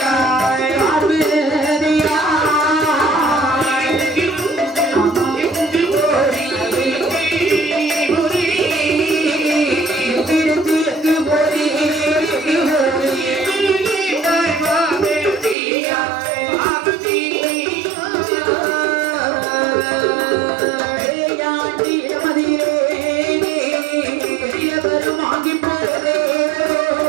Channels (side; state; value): left; drops out; at 15.6 s